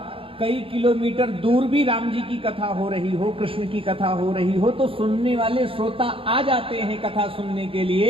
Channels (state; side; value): late; left; 0.26 ms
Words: कई किलोमीटर दूर भी राम जी की कथा हो रही हो, कृष्ण की कथा हो रही हो, तो सुनने वाले श्रोता आ जाते हैं कथा सुनने के